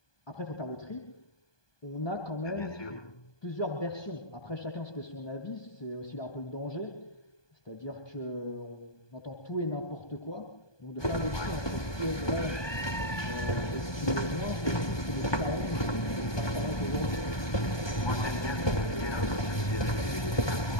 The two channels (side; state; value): right; late; 1.2 ms